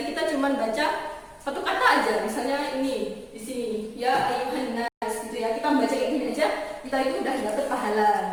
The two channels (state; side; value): identical; both; correlation 1.00